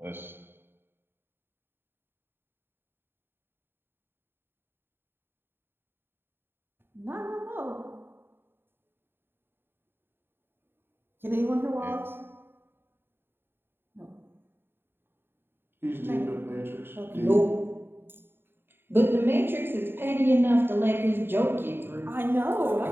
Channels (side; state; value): left; late; 0.11 ms